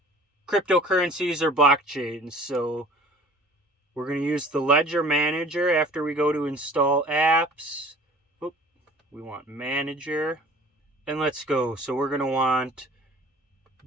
cryptocurrencies or blockchains. So we're going to use the Ledger Manager after we go to install apps. Oop, we want Manager. And let's go. So we're going to want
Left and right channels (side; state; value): both; normal; correlation 0.48